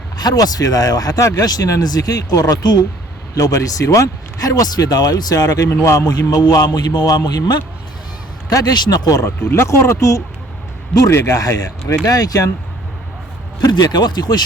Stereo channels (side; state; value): both; normal; correlation 0.57